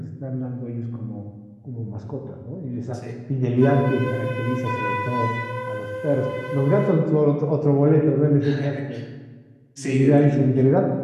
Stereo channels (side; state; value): both; identical; correlation 1.00